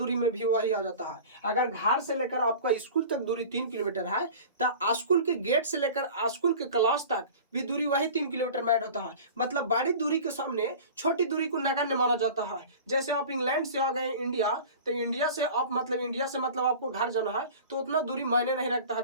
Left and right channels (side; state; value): both; inverted; correlation -0.39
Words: में भी वही आ जाता है। अगर घर से लेकर आपका स्कूल तक दूरी 3 किलोमीटर है, तो स्कूल के गेट से लेकर स्कूल के क्लास तक भी दूरी वही 3 किलोमीटर में ऐड होता है। मतलब बड़ी दूरी के सामने छोटी दूरी को नगण्य माना जाता है। जैसे आप इंग्लैंड से आ गए इंडिया, तो इंडिया से आपको घर जाना है, तो उतना दूरी मायने नहीं रखता